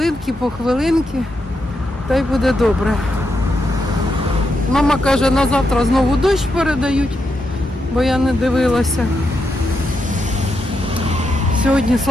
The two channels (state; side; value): normal; both; correlation 0.83